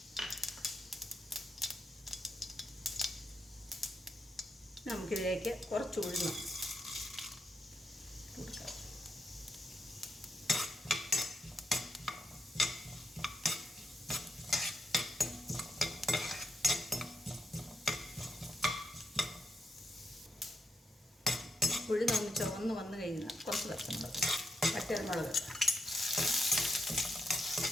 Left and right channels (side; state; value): both; normal; correlation 0.82